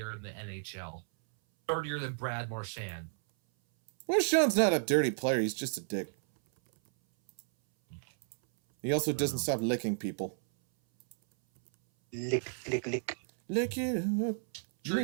in the NHL. Dirtier than Brad Marchand. Marchand's not a dirty player. He's just a dick. He also doesn't stop licking people. Lick. Lick it up.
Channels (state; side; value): silent; left; 56 dB below the other